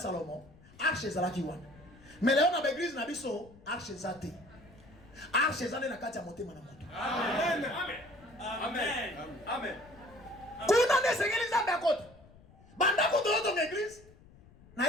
arche ezalaki wana. Mais lelo na église na biso arche ezate. Arche ezane na kati ya motema na moto. Amen. Amen. Amen. Kuna ne sengeli nzambe akota. Banda ko to église. Na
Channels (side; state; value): left; noise; rumble, 24 dB below the sound